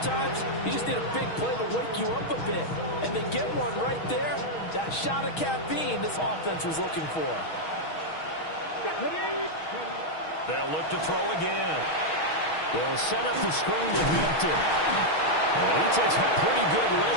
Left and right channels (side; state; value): right; late; 6.3 ms